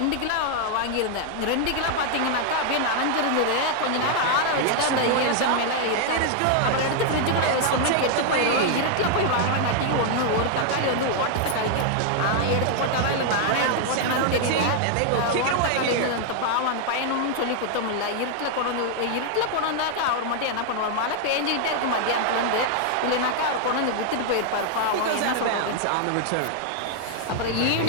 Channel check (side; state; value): both; different; correlation 0.00